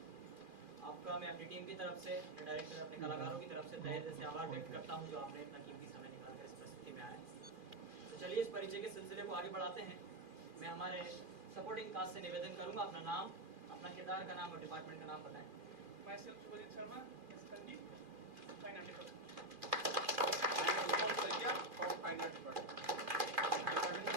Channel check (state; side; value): late; left; 2.4 ms